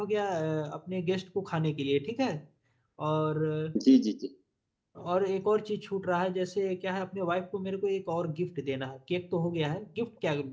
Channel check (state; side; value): identical; both; correlation 1.00